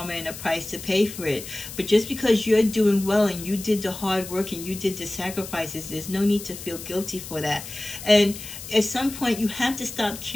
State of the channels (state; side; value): noise; left; hiss, 12 dB below the sound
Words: and a price to pay for it. But just because you're doing well and you did the hard work and you did the sacrifices, there's no need to feel guilty for that. And at some point, you have to stop